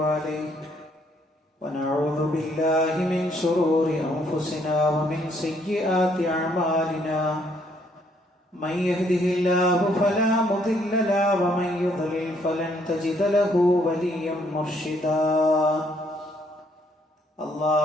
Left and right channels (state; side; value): normal; both; correlation 0.68